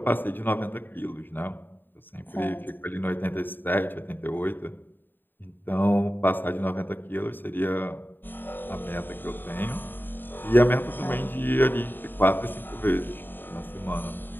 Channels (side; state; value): right; late; 0.093 ms